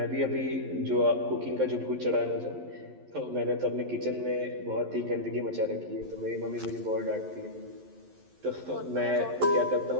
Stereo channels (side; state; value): left; late; 11 ms